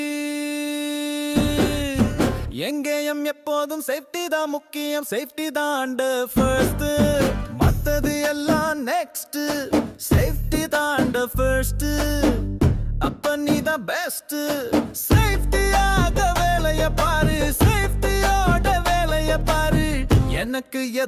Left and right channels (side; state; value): both; identical; correlation 1.00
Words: எங்கேயும் எப்போதும் சேஃப்டி தான் முக்கியம். சேஃப்டி தான் ஃபர்ஸ்ட், மத்தது எல்லாம் நெக்ஸ்ட். சேஃப்டி தான் ஃபர்ஸ்ட், அப்ப நீ தான் பெஸ்ட். சேஃப்டியாக வேலைய பாரு, சேஃப்டியோட வேலைய பாரு. எனக்கு